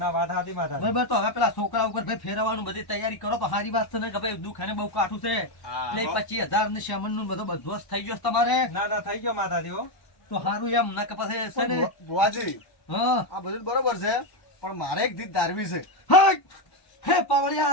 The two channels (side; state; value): right; late; 1.1 ms